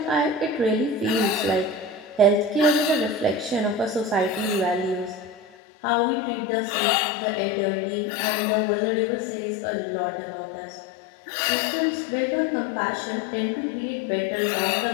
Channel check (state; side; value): drops out; right; at 5.4 s